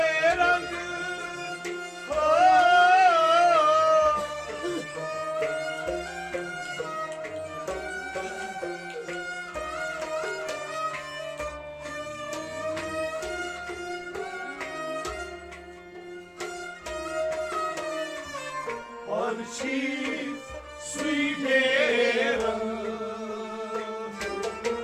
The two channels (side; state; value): both; identical; correlation 1.00